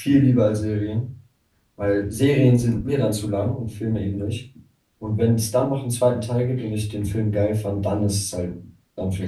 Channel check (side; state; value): both; identical; correlation 1.00